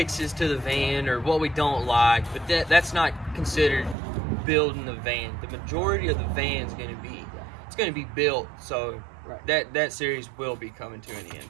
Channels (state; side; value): drops out; left; at 4.0 s